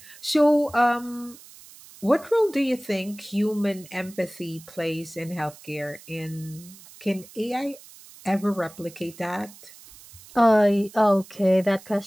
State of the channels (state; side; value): noise; right; hiss, 21 dB below the sound